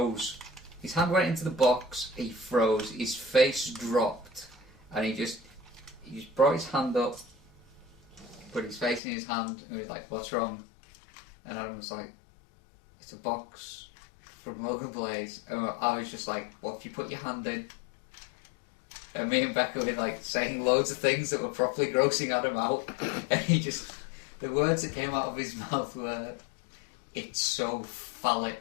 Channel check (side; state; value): right; drops out; at 9.0 s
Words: His hand went into the box, he froze, his face dropped, and he just brought his hand up, put his face in his hand, and he was like, "What's wrong?" And Adam was like, "It's a box from Logan Blaze." And I was just like, "What if you put your hand in?" And me and Becca were like saying loads of things that were properly grossing Adam out, and the words that came out of his mouth were, "It's so